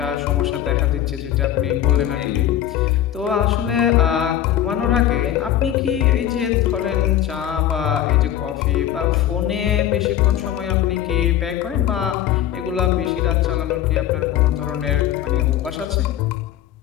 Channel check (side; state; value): right; quieter; 11.5 dB